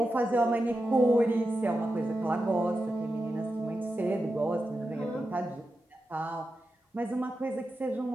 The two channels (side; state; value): both; normal; correlation 0.90